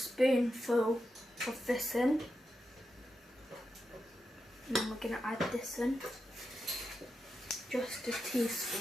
of this in. And then we're going to add this in. Just a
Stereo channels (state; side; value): normal; both; correlation 0.88